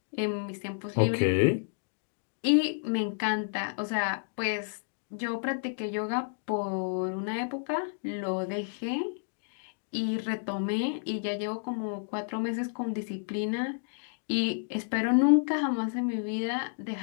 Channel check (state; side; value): silent; right; digital silence